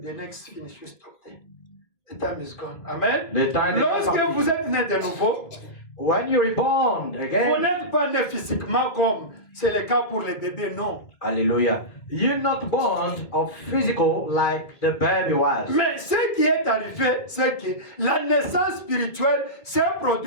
the next finish. We stop there. The time is gone. Amen. Le temps est Lorsque parti. vous êtes né de nouveau, When you reborn vous again, n'êtes pas né physiquement comme c'est le cas pour les bébés, non. hallelujah, you're not born of physical like the baby was. Mais ce qui est arrivé, c'est que la naissance spirituelle s'est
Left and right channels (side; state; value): right; late; 2.3 ms